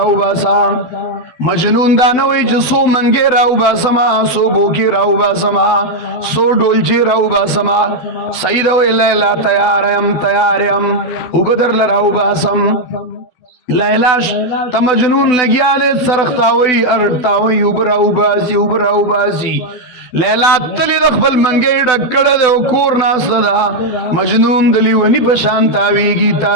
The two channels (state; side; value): late; right; 12 ms